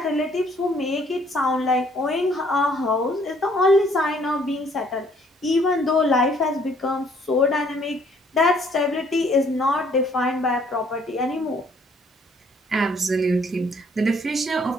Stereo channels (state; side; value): normal; both; correlation 0.63